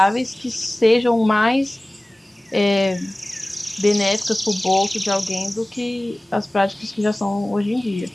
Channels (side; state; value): both; normal; correlation 0.98